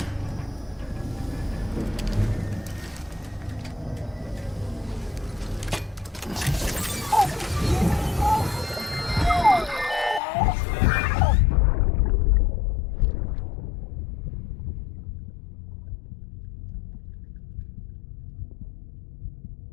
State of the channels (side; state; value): right; drops out; at 10.2 s